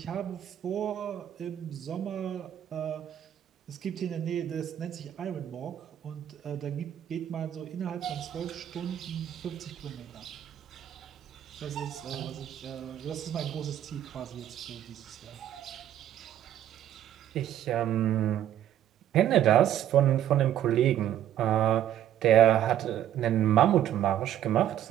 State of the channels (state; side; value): quieter; left; 11.3 dB